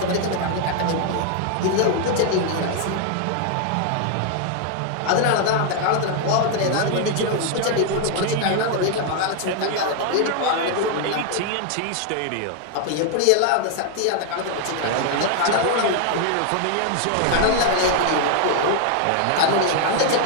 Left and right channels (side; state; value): both; different; correlation 0.00